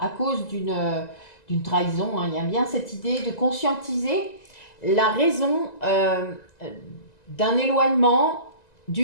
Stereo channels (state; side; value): late; right; 2.0 ms